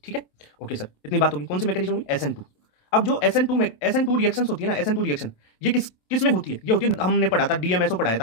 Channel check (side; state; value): right; late; 27 ms